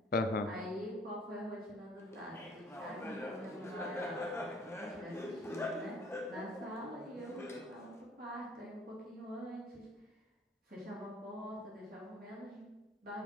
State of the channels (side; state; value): both; normal; correlation 0.55